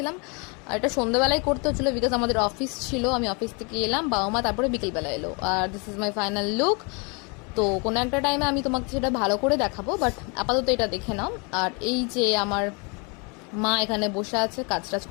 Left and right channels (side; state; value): right; quieter; 32.2 dB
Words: আর এটা সন্ধ্যাবেলায় করতে হচ্ছিলো বিকজ আমাদের অফিস ছিল, আমি অফিস থেকে এলাম, বাবা মা তারপরে বিকেলবেলা এলো। আর this is my final look. তো কোনো একটা টাইমে আমি তোমাকে সেটা ভালো করে দেখাবো, বাট আপাতত এটা দেখে নাও। আর এই যে আমার মা এখানে বসে আছে, কাজ টাজ